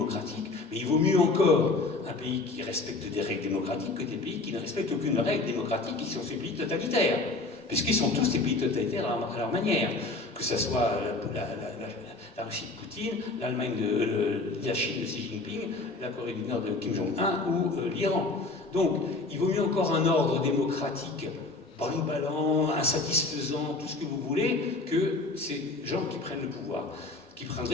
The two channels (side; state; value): right; quieter; 3.3 dB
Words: mais il vaut mieux encore un pays qui respecte des règles démocratiques que des pays qui ne respectent aucune règle démocratique, qui sont ces pays totalitaires. Puisqu'ils sont tous des pays totalitaires à leur manière, que ce soit la Russie de Poutine, l'Allemagne la Chine de Xi Jinping, la Corée du Nord de Kim Jong-un ou l'Iran. Donc, il vaut mieux encore un ordre démocratique ballant, insatisfaisant, tout ce que vous voulez, que ces gens qui prennent le pouvoir, qui